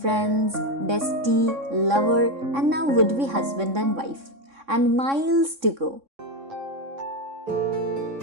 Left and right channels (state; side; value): late; left; 3.6 ms